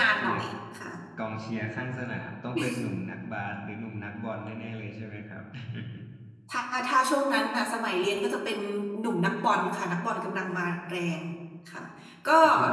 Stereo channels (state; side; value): identical; both; correlation 1.00